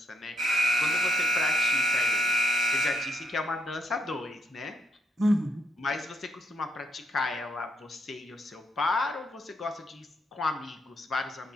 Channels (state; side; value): normal; both; correlation 0.74